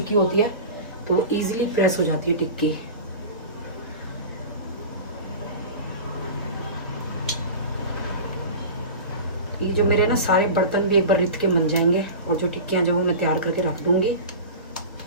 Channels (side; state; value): both; inverted; correlation -0.33